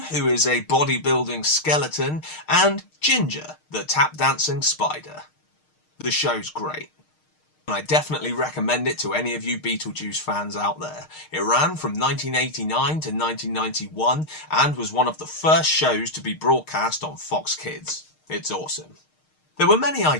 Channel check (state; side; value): late; right; 6.5 ms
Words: who is a bodybuilding skeleton, and Ginger, the tap-dancing spider. The show's great. I definitely recommend it to any of you Beetlejuice fans out there. It ran from 1989 to 1991 and was one of the first shows to be broadcast on Fox Kids. It's awesome. There were many